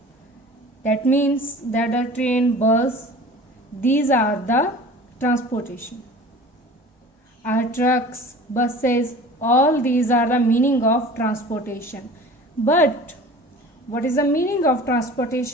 that means that the train, बस, these are the transportation. Our trucks, buses, all these are the meaning of transportation. But what is the meaning of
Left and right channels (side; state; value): both; normal; correlation 0.42